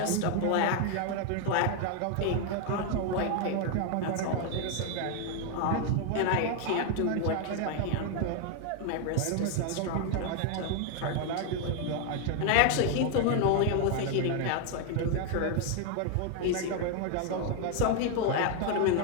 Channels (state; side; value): different; both; correlation 0.00